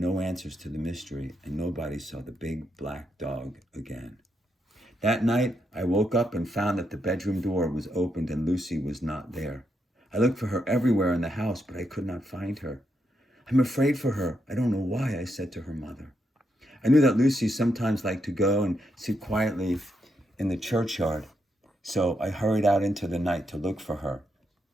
answers to the mystery, and nobody saw the big black dog again. That night, I woke up and found that the bedroom door was opened and Lucy was not there. I looked for her everywhere in the house, but I could not find her. I'm afraid for her. I don't know why, I said to her mother. I knew that Lucy sometimes liked to go and sit quietly in the churchyard, so I hurried out into the night to look for her,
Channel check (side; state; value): both; normal; correlation 0.81